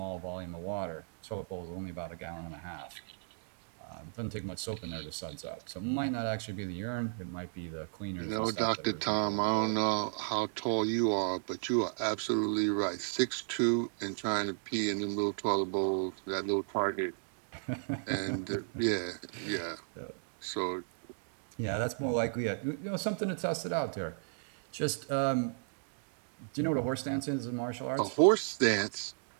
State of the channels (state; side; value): silent; left; digital silence